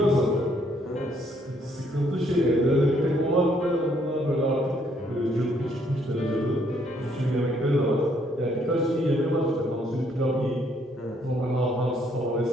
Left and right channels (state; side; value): normal; both; correlation 0.68